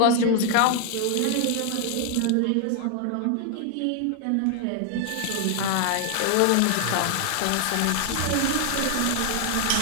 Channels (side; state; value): both; different; correlation 0.00